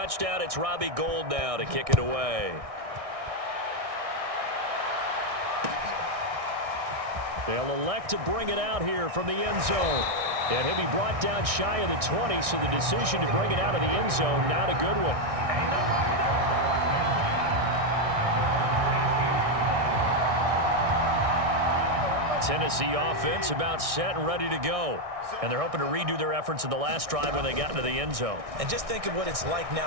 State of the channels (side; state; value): left; late; 1.6 ms